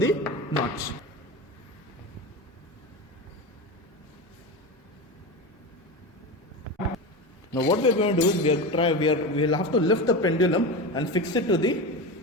notch. Now what we are going to do is we will have to lift the pendulum and fix it to the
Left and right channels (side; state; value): both; normal; correlation 0.23